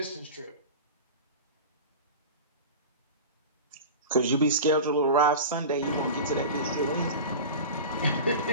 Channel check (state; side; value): inverted; both; correlation -0.30